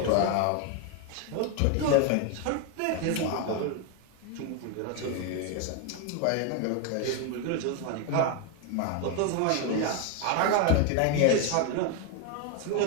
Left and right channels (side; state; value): both; different; correlation 0.01